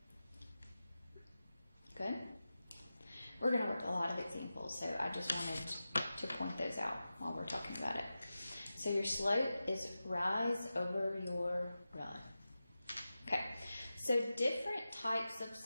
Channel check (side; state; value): both; inverted; correlation -0.93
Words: Good? We're going to work a lot of examples, so I just wanted to point those out while we're talking about it. So your slope is rise over your run. Okay, so different types of